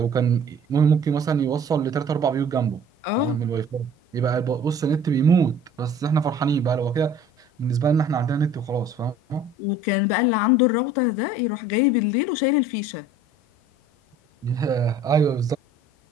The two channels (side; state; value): both; normal; correlation 0.50